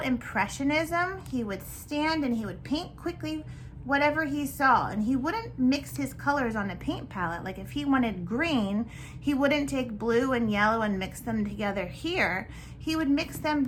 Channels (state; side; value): identical; both; correlation 1.00